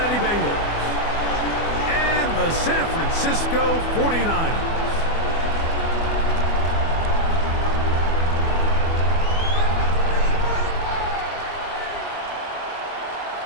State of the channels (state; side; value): late; right; 24 ms